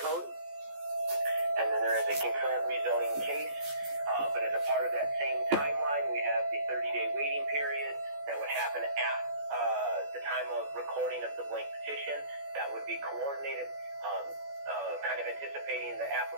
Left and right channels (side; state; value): left; late; 14 ms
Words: And then there is a concurrent rezoning case, but as a part of that same timeline, we have the 30-day waiting period that would happen at the time of recording of the blank petition. That would be coordinated, kind of anticipating the